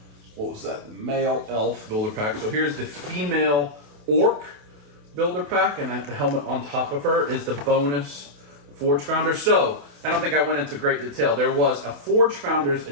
what was that? The male elf builder pack. So here's the female orc builder pack, and the helmet on top of her is the bonus Forge Founder. So I don't think I went into great detail. There was a Forge Founders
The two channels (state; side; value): late; left; 28 ms